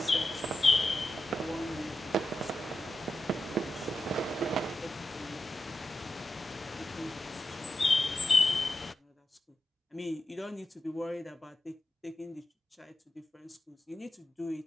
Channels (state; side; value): normal; both; correlation 0.89